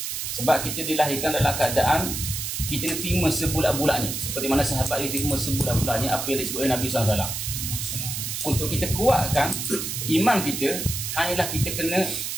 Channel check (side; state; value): right; noise; hiss, 4 dB below the sound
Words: Sebab kita dilahirkan dalam keadaan kita nak terima sebulat-bulatnya, seperti mana sahabat dia terima sebulat-bulatnya apa yang disebut oleh Nabi SAW. Untuk kita kuatkan iman kita, hanyalah kita kena